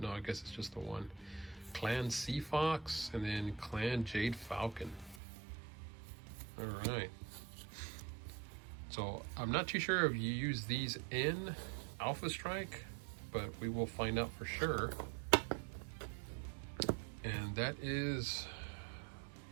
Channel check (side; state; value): left; drops out; at 5.2 s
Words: I guess it's just the one. Clan Sea Fox, and then Clan Jade Falcon. All right. So I'm not too sure if you use these in Alpha Strike, but we will find out for sure. And that is